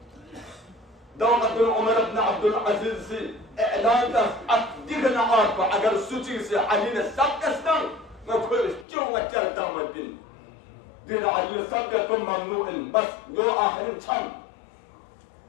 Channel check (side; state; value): right; drops out; at 8.8 s